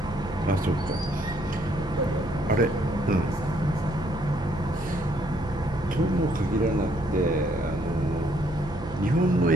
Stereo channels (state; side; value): noise; right; hum, 15 dB below the sound